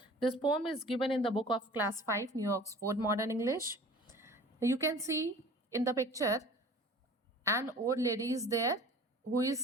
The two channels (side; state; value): both; normal; correlation 0.44